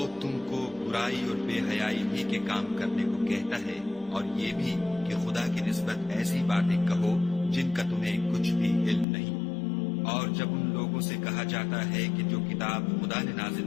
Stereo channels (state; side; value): drops out; right; at 9.1 s